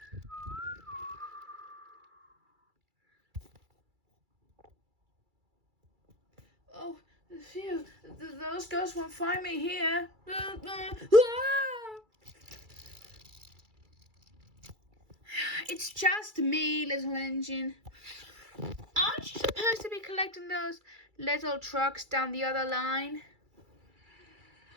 Oh, phew. Those ghosts won't find me here. It's just me, little engine. Aren't you supposed to be collecting those little trucks down the other line?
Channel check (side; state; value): left; late; 2.3 ms